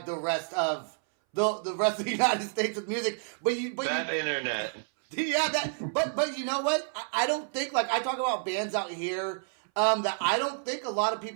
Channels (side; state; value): left; silent; 58 dB below the other